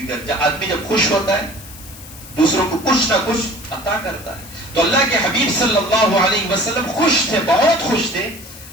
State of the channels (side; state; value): left; noise; hiss, 17 dB below the sound